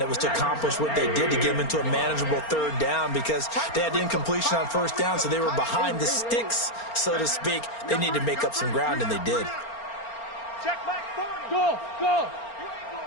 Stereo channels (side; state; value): right; late; 4.3 ms